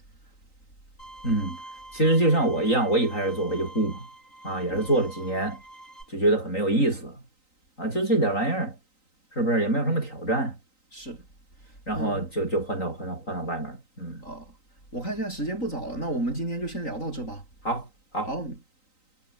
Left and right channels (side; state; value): right; late; 3.9 ms